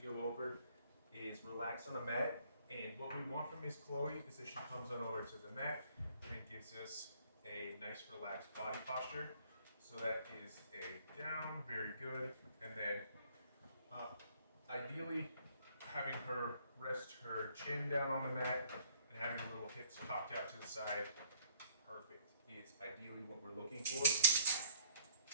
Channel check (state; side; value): inverted; both; correlation -0.63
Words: over is relax on a mat. And what we want from Miss Chloe is that she comes on over to the mat and gives us a nice relaxed body posture. So that is a down, very good. And then ideally having her rest her chin down on the mat and having her little hips cocked out to the side. Perfect is ideally what we're looking for.